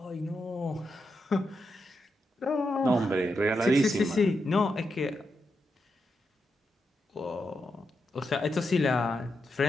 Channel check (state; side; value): normal; both; correlation 0.85